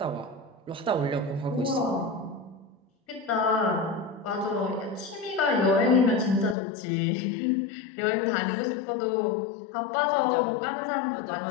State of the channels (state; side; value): drops out; right; at 6.6 s